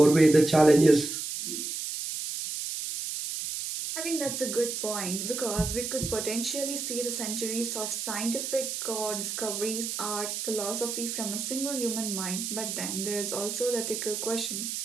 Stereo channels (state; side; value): noise; right; hiss, 4 dB below the sound